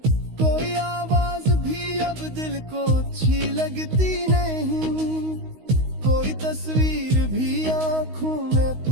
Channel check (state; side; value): late; left; 16 ms